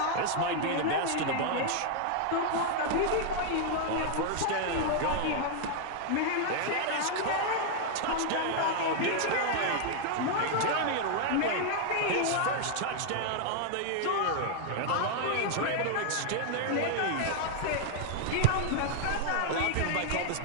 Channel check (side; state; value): both; different; correlation 0.00